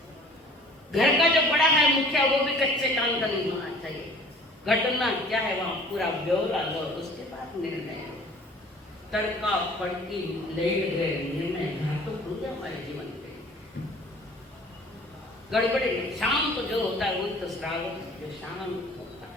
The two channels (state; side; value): normal; both; correlation 0.49